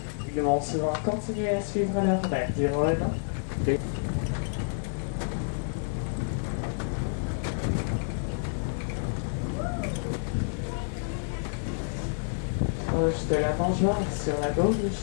Ils vont souvent continuer à suivre leur mère durant 1 an. Proche de la mangeoire sur la gauche,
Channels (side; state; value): right; silent; 59 dB below the other